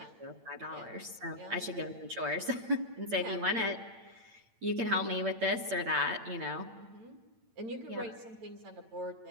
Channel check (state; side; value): late; left; 8.9 ms